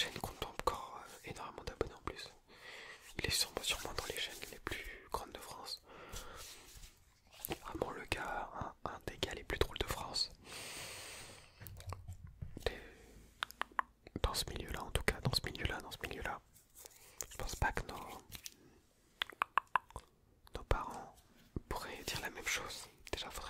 compte encore énormément d'abonnés en plus. Il est sûrement dans les chaînes les plus grandes de France. Vraiment le gars, un des gars les plus drôles de France. Dans ce milieu-là, en tout cas, dans ce milieu-là. Je pense pas que nos parents pourraient dire la même chose. Déjà,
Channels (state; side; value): identical; both; correlation 1.00